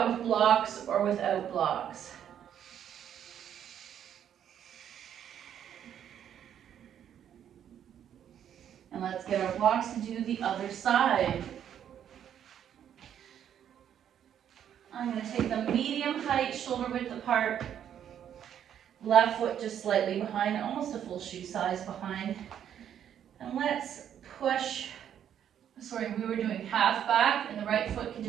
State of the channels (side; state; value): left; quieter; 9.6 dB